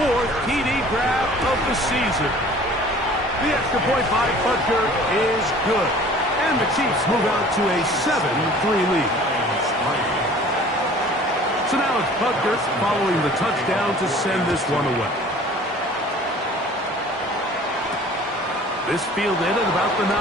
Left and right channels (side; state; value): both; normal; correlation 0.48